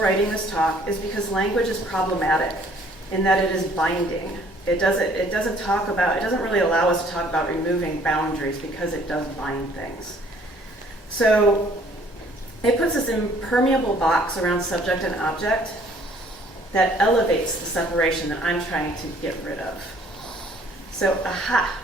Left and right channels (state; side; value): normal; both; correlation 0.59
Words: this talk is because language is problematic in that it is binding. It doesn't really allow us to talk about removing boundaries, because it does bind things. So it puts this impermeable box around subject and object that elevates the separation that I'm trying to get rid of. So,